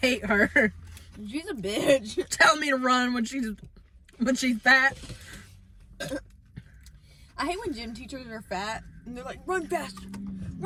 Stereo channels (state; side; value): identical; both; correlation 1.00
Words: hate her. She's a bitch. Telling me to run when she's fat. I hate when gym teachers are fat and they're like, run faster,